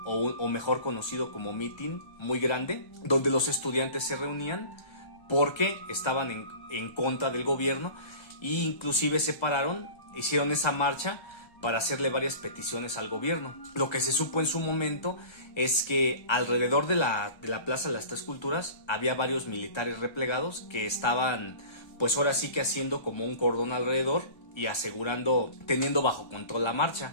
o mejor conocido como mitin, muy grande, donde los estudiantes se reunían porque estaban en contra del gobierno e inclusive se pararon, hicieron esa marcha para hacerle varias peticiones al gobierno. Lo que se supo en su momento es que alrededor de la Plaza de las Tres Culturas había varios militares replegados que estaban, pues ahora sí que haciendo como un cordón alrededor y asegurando, teniendo bajo control la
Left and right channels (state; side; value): late; right; 1.3 ms